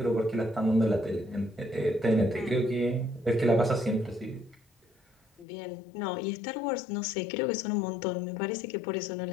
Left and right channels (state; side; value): drops out; right; at 5.5 s